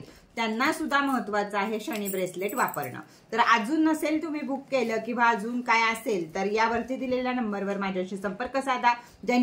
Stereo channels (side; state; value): both; identical; correlation 1.00